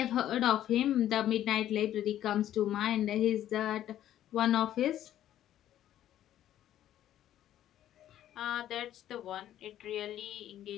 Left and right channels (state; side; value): quieter; right; 12.0 dB